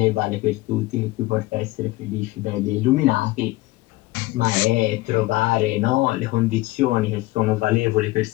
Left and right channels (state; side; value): quieter; right; 19.5 dB